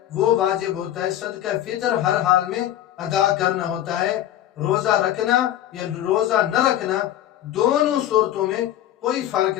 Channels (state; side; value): quieter; right; 12.4 dB